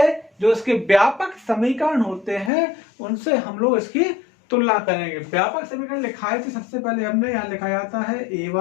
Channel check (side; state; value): right; drops out; at 2.5 s